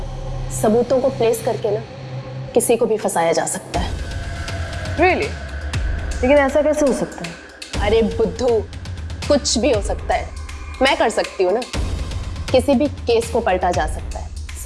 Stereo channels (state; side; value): identical; both; correlation 1.00